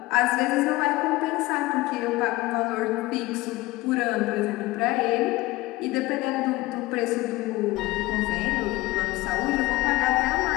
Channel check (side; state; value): right; quieter; 19.6 dB